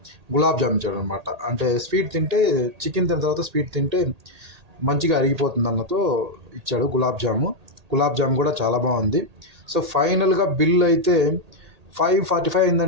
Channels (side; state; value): left; late; 1.8 ms